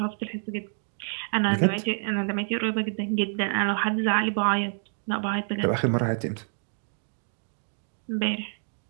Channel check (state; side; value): silent; left; 60 dB below the other